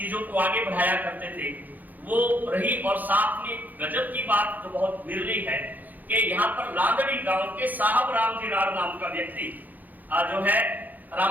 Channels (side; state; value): left; late; 0.083 ms